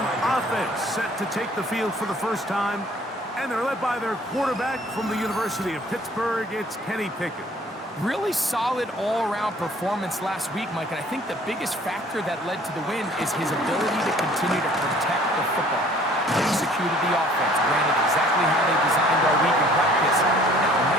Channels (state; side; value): normal; both; correlation 0.55